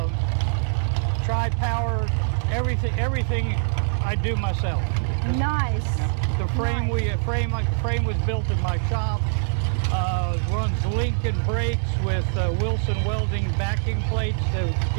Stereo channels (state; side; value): silent; left; 63 dB below the other